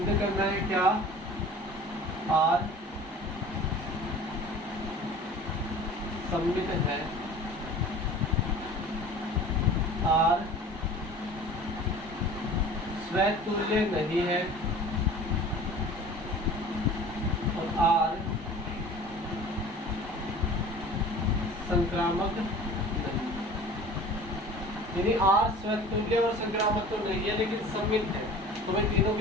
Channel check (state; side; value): normal; both; correlation 0.42